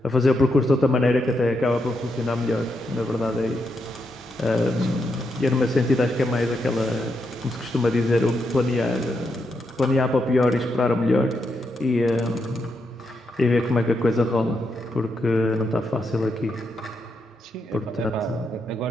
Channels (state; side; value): normal; both; correlation 0.82